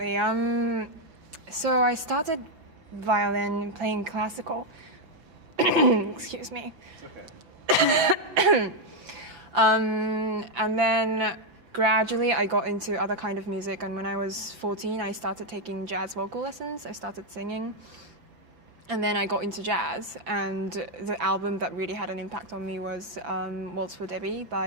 So I started violin playing classical. Excuse me. It's okay. And then gradually I got into other kind of music, and when I was 14 I started taking jazz vocal lessons. I started singing, and then I got into jazz, and the album that really had an impact on me was Waltz for Debbie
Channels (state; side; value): late; left; 5.9 ms